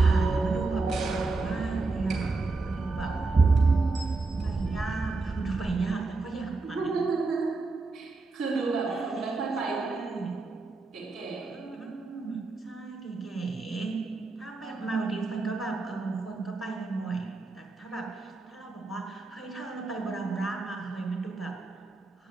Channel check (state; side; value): quieter; left; 3.6 dB